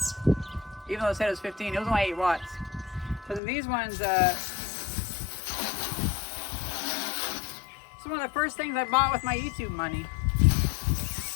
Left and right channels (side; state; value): right; drops out; at 3.4 s